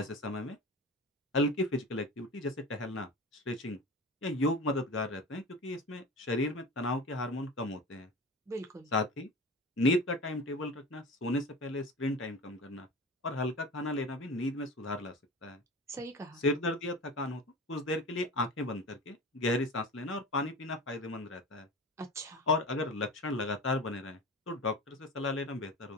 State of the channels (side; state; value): both; normal; correlation 0.33